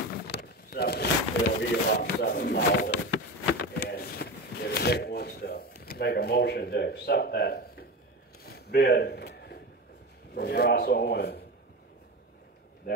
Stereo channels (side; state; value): both; normal; correlation 0.25